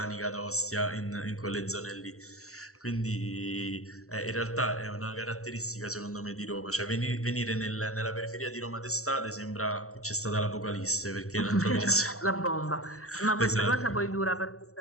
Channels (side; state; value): right; late; 0.64 ms